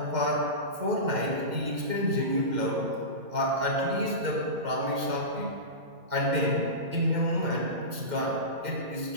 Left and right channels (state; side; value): late; left; 2.1 ms